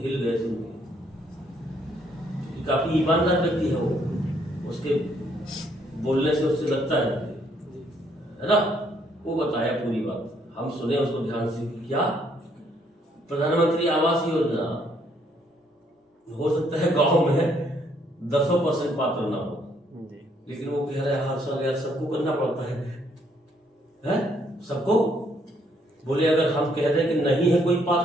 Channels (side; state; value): both; normal; correlation 0.69